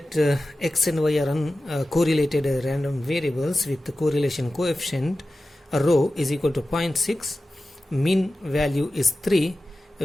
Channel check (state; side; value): normal; both; correlation 0.94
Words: x and y are correlated random variables with the correlation coefficient rho is equal to 0.6, mean value is 3,